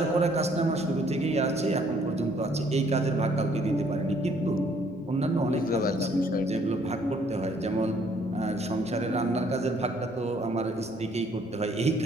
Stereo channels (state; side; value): noise; left; hum, 27 dB below the sound